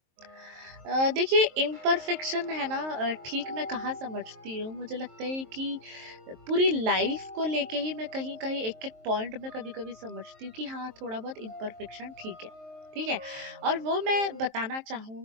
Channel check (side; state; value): left; late; 23 ms